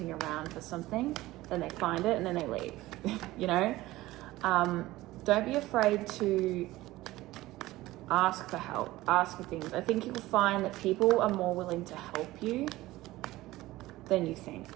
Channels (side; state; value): left; quieter; 17.6 dB